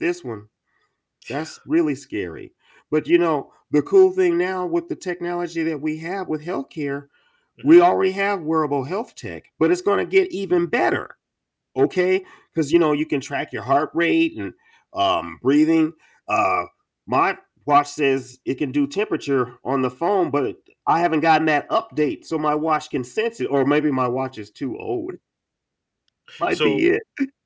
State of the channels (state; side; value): identical; both; correlation 1.00